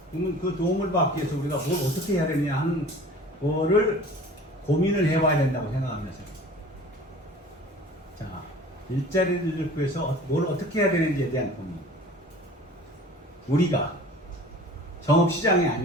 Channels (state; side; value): normal; both; correlation 0.44